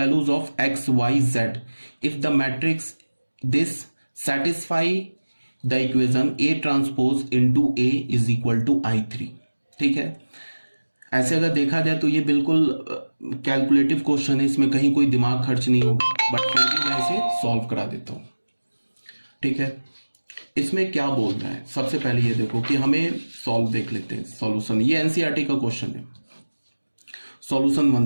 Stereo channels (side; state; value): both; inverted; correlation -1.00